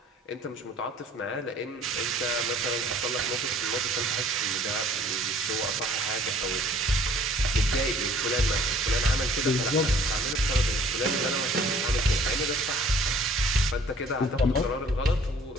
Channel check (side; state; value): both; normal; correlation 0.54